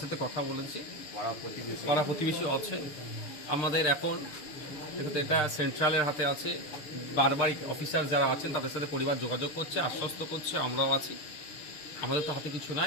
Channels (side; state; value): right; late; 6.6 ms